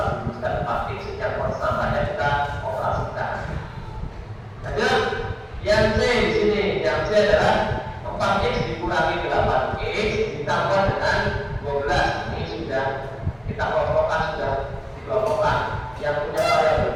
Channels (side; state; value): both; identical; correlation 1.00